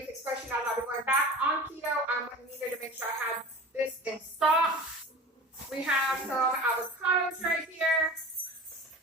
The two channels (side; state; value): both; normal; correlation 0.36